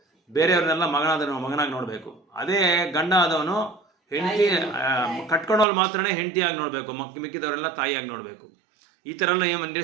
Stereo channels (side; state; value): left; drops out; at 5.7 s